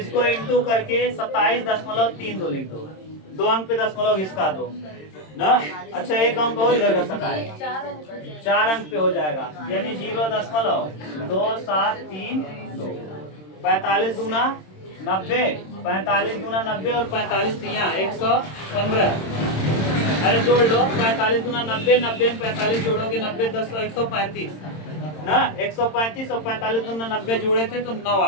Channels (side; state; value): right; late; 26 ms